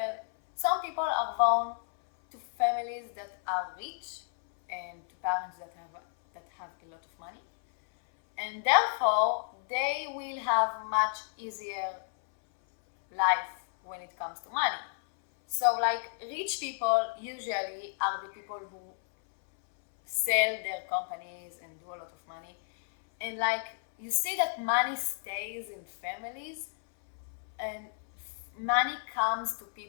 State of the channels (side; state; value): right; silent; 57 dB below the other